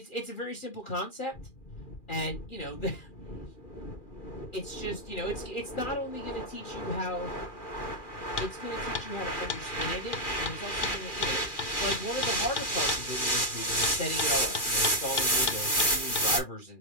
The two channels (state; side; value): late; right; 2.4 ms